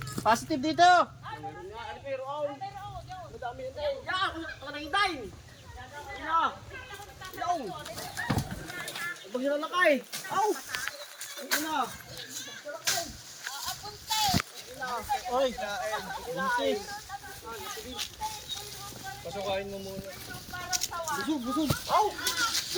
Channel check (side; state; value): both; identical; correlation 1.00